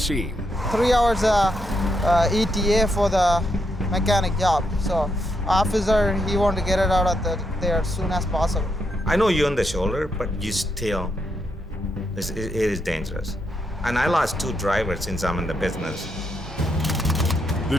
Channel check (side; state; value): both; normal; correlation 0.80